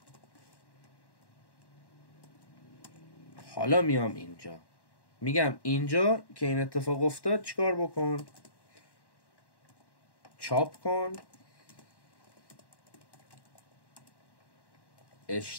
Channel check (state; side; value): late; right; 1.1 ms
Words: حالا میام اینجا میگم اینجا که این اتفاق افتاد چیکار بکن؟ چاپ کن.